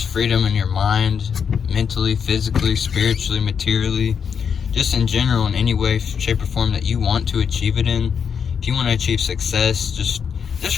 freedom in your mind, mentally, physically, spiritually, materially, just in general, in any way, shape, or form that you want to achieve it in, if you want to achieve success, just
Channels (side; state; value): right; quieter; 6.9 dB